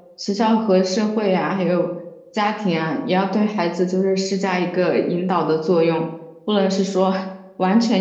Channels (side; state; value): both; identical; correlation 1.00